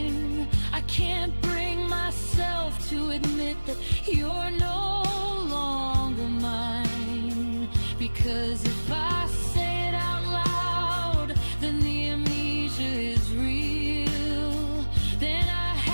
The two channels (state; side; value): inverted; both; correlation -1.00